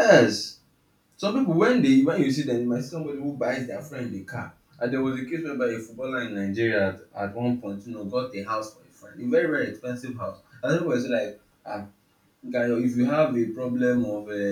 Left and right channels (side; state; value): both; identical; correlation 1.00